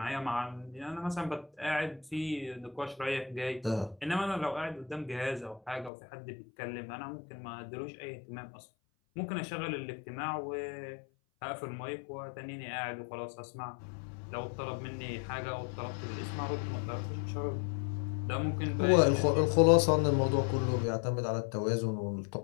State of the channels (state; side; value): drops out; right; at 5.9 s